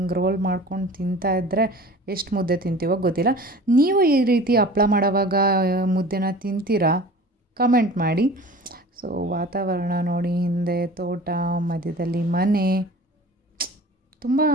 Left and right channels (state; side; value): normal; both; correlation 0.41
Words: ರೋಲ್ ಮಾಡ್ಕೊಂಡು ತಿಂತಾಯಿದ್ರೆ ಎಷ್ಟು ಮುದ್ದೆ ತಿಂತೀವೋ ಗೊತ್ತಿಲ್ಲ. ನೀವು ಈ ರೀತಿ ಹಪ್ಪಳ ಮಾಡೋವಾಗ ಮುದ್ದೆನ ತಿಂತೀರಾ? ಕಮೆಂಟ್ ಮಾಡಿ. ಸೊ ವಾತಾವರಣ ನೋಡಿ, ಹಿಂದೆ ತೋಟ, ಮಧ್ಯದಲ್ಲಿ ಮನೆ. ತುಂಬ